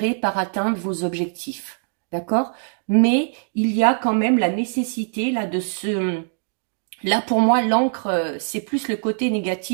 par atteindre vos objectifs. D'accord? Mais il y a quand même la nécessité là de se... Là, pour moi, l'encre, c'est plus le côté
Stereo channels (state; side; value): silent; left; digital silence